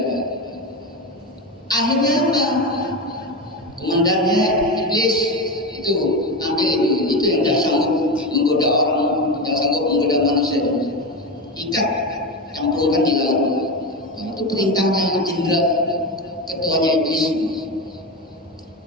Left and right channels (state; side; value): normal; both; correlation 0.18